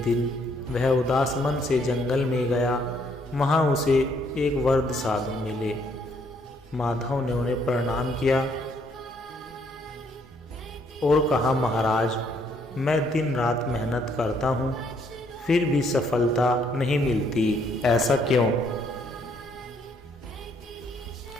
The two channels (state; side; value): normal; both; correlation 0.68